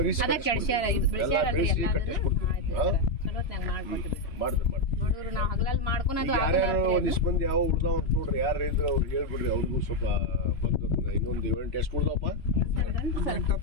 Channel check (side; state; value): right; late; 3.0 ms